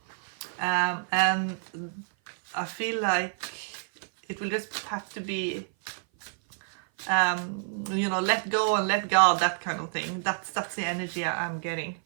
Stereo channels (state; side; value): silent; left; 56 dB below the other